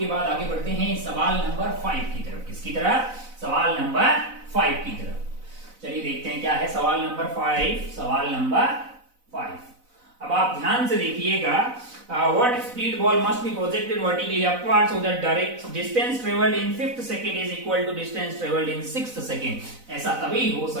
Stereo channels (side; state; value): left; late; 4.0 ms